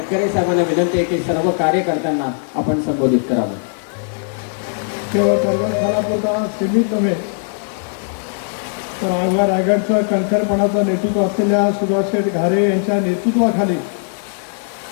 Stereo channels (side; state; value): right; silent; 58 dB below the other